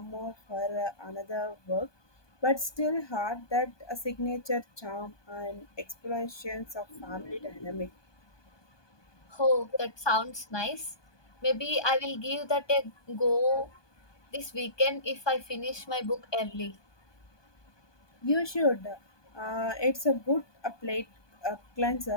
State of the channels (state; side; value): late; right; 1.2 ms